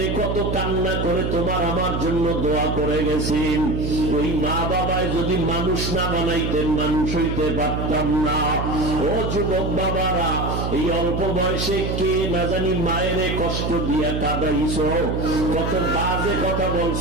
কত কান্না করে তোমার আমার জন্য দোয়া করে গেছেন। ওই মা বাবায় যদি মানুষ না বানাইতেন, মানুষ হইতে পারতাম না। ও যুবক বাবারা, এই অল্প বয়সে কে না জানি মায়েরে কষ্ট দিয়া কাঁদাইছো, কত বাজে কথা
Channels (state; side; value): noise; right; hum, 2 dB below the sound